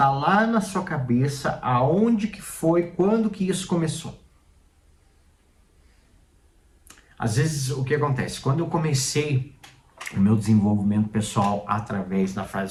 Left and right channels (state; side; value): identical; both; correlation 1.00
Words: lá na sua cabeça aonde que foi, quando que isso começou. Às vezes o que acontece? Quando eu comecei o meu desenvolvimento pessoal através da